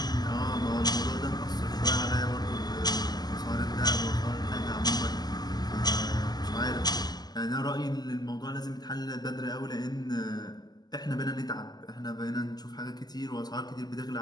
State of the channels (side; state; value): right; late; 0.20 ms